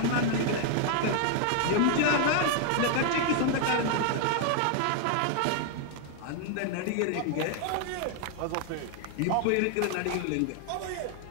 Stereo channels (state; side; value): different; both; correlation 0.00